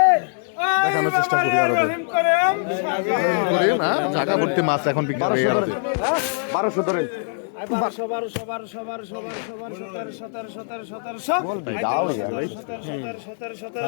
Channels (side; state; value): right; silent; digital silence